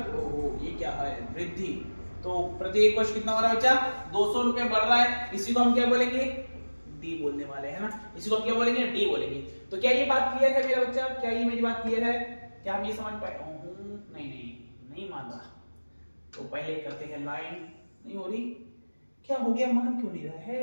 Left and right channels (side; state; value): both; inverted; correlation -1.00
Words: ये क्या है? वृद्धि। तो प्रत्येक वर्ष कितना हो रहा है बच्चा? 200 रुपए बढ़ रहा है। इसी को हम क्या बोलेंगे? डी बोलने वाले हैं ना, इसी को हम क्या बोलेंगे? डी बोलेंगे। तो क्या ये बात क्लियर है मेरा बच्चा? क्या ये मेरी बात क्लियर है? क्या हम ये समझ पाए? नहीं मान रहा। तो पहले करते हैं लाइन, नहीं हो रही, क्या हो गया? मान क्यों नहीं रहा